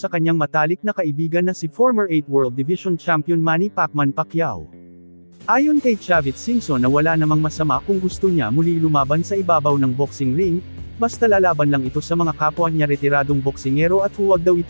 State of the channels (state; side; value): inverted; both; correlation -1.00